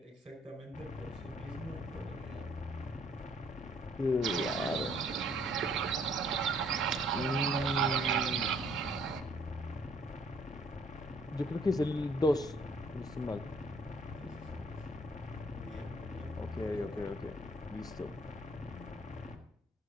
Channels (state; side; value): normal; both; correlation 0.62